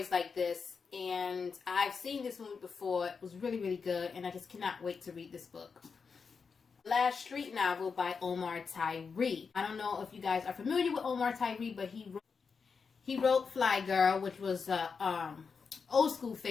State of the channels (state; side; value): quieter; right; 5.4 dB